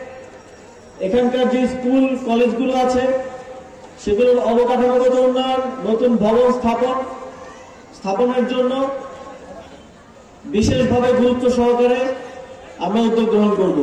এখানকার যে স্কুল কলেজগুলো আছে সেগুলোর অবকাঠামোগত উন্নয়ন, নতুন ভবন স্থাপনের জন্য বিশেষভাবে গুরুত্ব সহকারে আমরা উদ্যোগ গ্রহণ করব।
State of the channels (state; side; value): identical; both; correlation 1.00